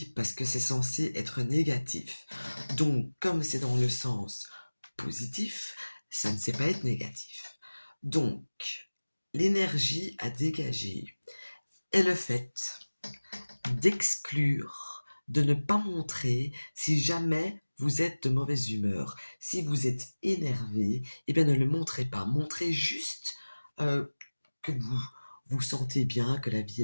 parce que c'est censé être négatif. Donc, comme c'est dans le sens positif, ça ne sait pas être négatif. Donc, l'énergie à dégager est le fait d'exclure, de ne pas montrer si jamais vous êtes de mauvaise humeur. Si vous êtes énervé, eh bien ne le montrez pas. Montrez juste que vous vous sentez bien, que la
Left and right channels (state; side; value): inverted; both; correlation -1.00